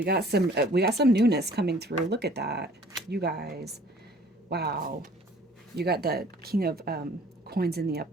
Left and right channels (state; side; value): normal; both; correlation 0.53